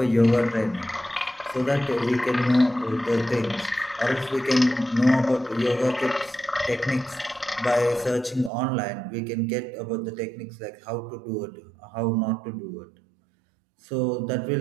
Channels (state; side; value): drops out; left; at 8.5 s